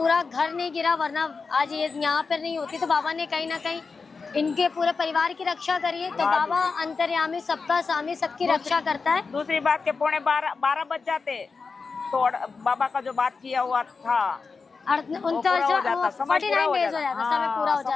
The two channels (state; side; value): quieter; right; 4.7 dB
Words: घर नहीं गिरा, वरना आज ये यहाँ पर नहीं होती। तो बाबा ने कहीं ना कहीं इनके पूरे परिवार की रक्षा करी है। तो बाबा अंतर्यामी, सबका स्वामी, सबकी रक्षा करता है। दूसरी बात के 12:15 बज जाते तो बाबा का जो बात किया हुआ था 49 डेज हो जाता, समय